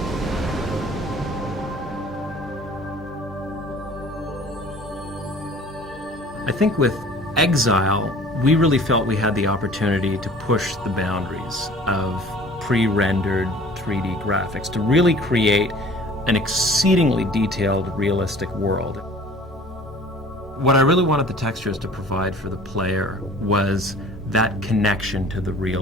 I think with Exile, we really felt we had the opportunity to push the boundaries of pre-rendered 3D graphics to really create an exceedingly detailed, realistic world. What I really wanted the textures to provide for the player was that connection to the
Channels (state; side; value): normal; both; correlation 0.48